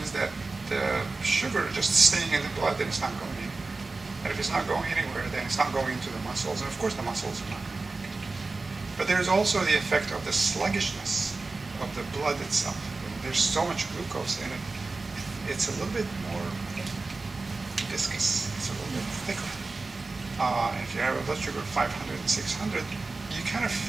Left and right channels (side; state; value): left; quieter; 3.6 dB